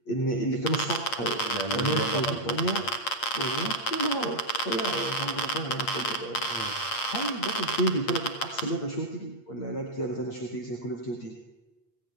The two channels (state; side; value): late; right; 8.6 ms